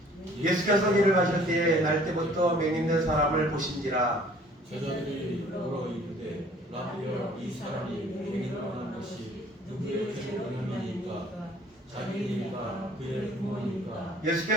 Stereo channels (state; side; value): normal; both; correlation 0.54